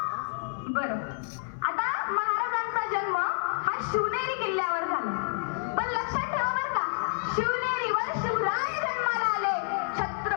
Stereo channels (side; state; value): right; silent; 56 dB below the other